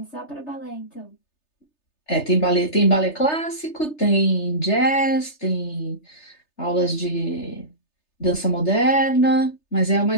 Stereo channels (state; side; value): late; right; 3.3 ms